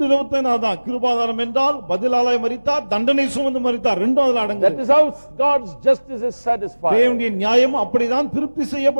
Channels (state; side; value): inverted; both; correlation -1.00